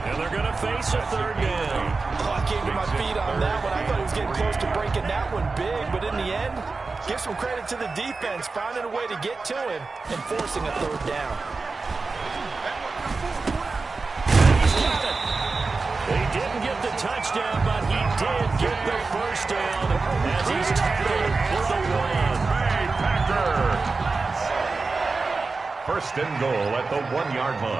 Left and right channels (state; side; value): quieter; left; 4.0 dB